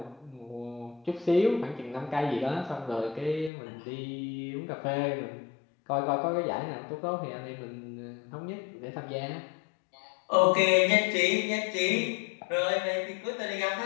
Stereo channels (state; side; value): drops out; right; at 3.5 s